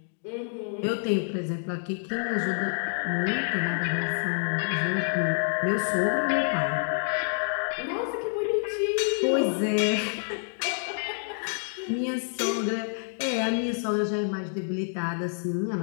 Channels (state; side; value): silent; right; digital silence